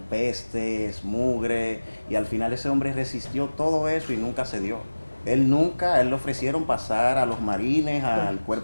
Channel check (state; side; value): inverted; both; correlation -1.00